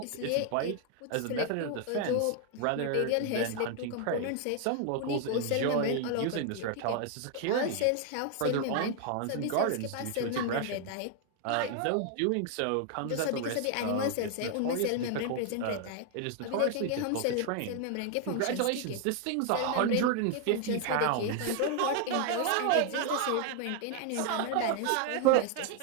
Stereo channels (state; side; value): different; both; correlation 0.00